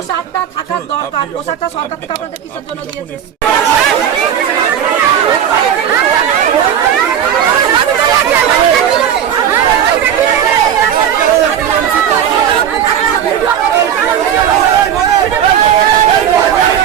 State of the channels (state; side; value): quieter; left; 9.3 dB